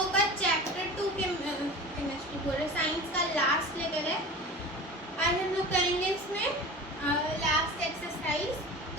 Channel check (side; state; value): both; normal; correlation 0.35